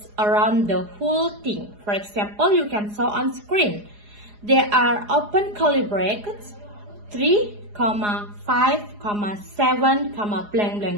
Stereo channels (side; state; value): left; late; 4.8 ms